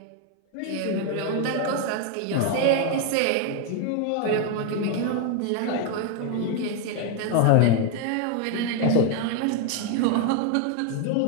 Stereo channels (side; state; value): both; different; correlation 0.01